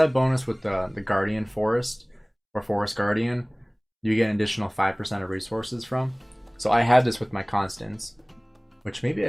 bonus with the Guardian Forest, or Forest Guardian, you get an additional 5% of resources from. So I had this with my constants, which maybe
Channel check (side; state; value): both; identical; correlation 1.00